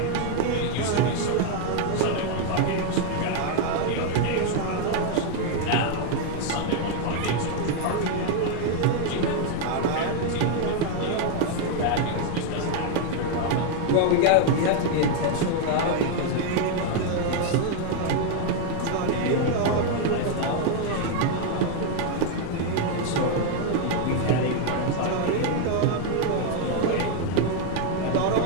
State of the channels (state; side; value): different; both; correlation 0.01